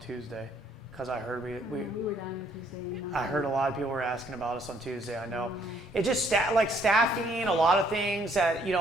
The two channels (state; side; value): normal; both; correlation 0.66